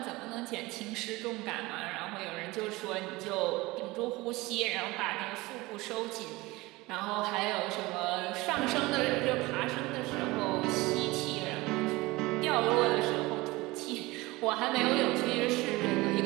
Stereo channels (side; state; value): left; quieter; 21.3 dB